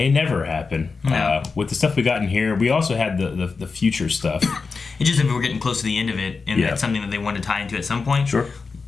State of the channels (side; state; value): right; quieter; 4.6 dB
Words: never happen. No. With the stuff we got in here, we also had the future stuff. It's just if we're getting close to the end of it, and that's something that they want to tie into at some point. Sure.